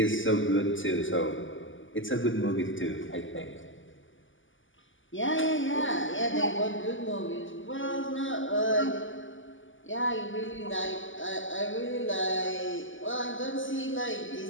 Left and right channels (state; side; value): late; right; 0.57 ms